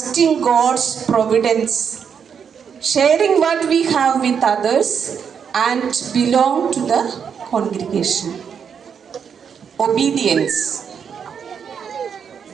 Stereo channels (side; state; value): left; quieter; 7.1 dB